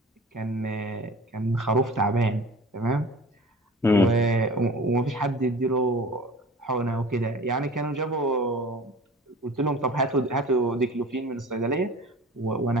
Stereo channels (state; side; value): normal; both; correlation 0.41